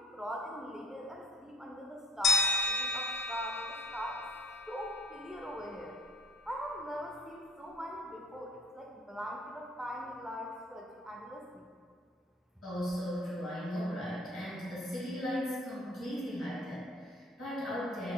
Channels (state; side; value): normal; both; correlation 0.49